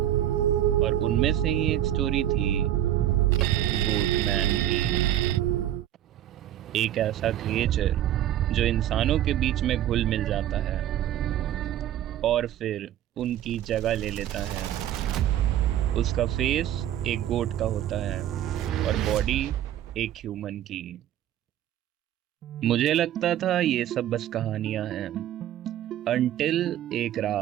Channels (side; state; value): left; quieter; 12.0 dB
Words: उनमें से ही एक स्टोरी थी गोटमैन की। एक ऐसा क्रिएचर जो इंसानों के बीच में घुल मिल जाता है और फिर उनकी जगह ले लेता है। उसका फेस एक गोट का होता है और बॉडी एक ह्यूमन की। मुझे लगता था ये सब बस कहानियां हैं, अनटिल एक